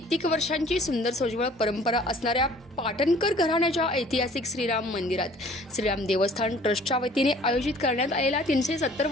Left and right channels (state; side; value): normal; both; correlation 0.53